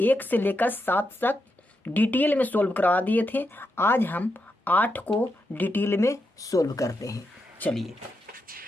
1 से लेकर 7 तक डिटेल में सोल्व करवा दिए थे। आज हम 8 को डिटेल में सोल्व करते हैं। चलिए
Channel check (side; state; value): both; normal; correlation 0.84